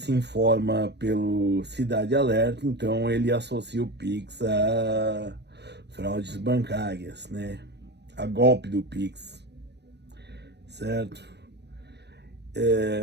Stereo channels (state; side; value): late; left; 0.50 ms